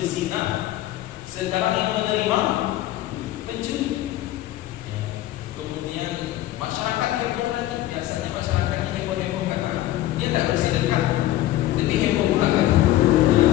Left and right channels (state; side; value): quieter; right; 14.7 dB